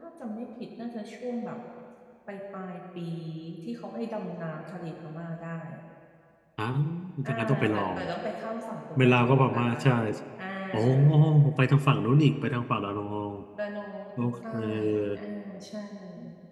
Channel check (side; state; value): both; identical; correlation 1.00